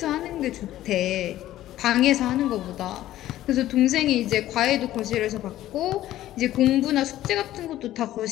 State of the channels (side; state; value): right; quieter; 13.9 dB